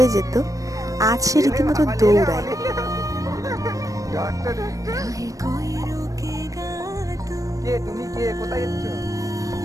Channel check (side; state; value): left; late; 0.16 ms